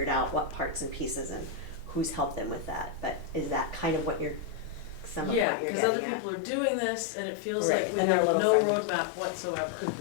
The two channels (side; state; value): right; drops out; at 5.5 s